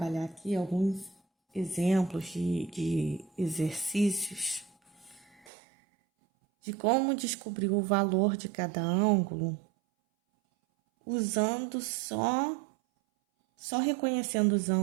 aqui alguns exemplos de exercícios de como descobrir o valor de cada ângulo usando só reconhecendo os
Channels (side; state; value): left; drops out; at 5.5 s